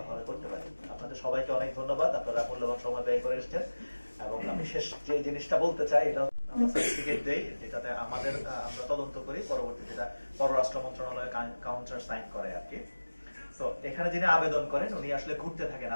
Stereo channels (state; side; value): inverted; both; correlation -1.00